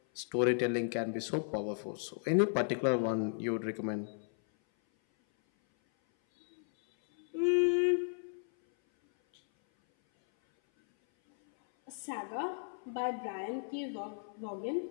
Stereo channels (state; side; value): silent; right; 55 dB below the other